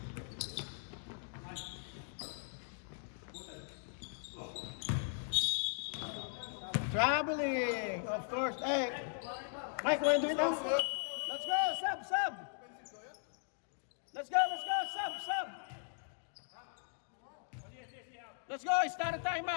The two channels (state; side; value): silent; right; digital silence